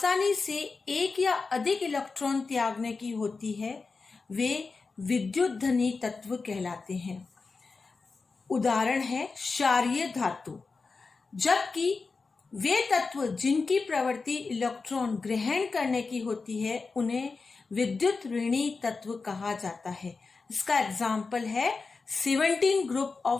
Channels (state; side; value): quieter; right; 4.3 dB